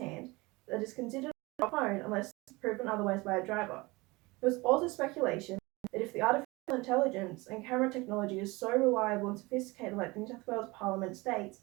that is considered a phone unless proven otherwise by a driver. There was also speculation that if the artificial intelligence and camera technology is so reliable and sophisticated like the New South Wales Parliament states,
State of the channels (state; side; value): quieter; left; 23.4 dB